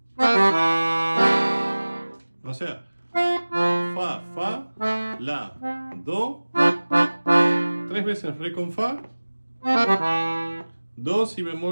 O sea, fa, fa, la, do, 3 veces re con fa, do, si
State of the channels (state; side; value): inverted; both; correlation -1.00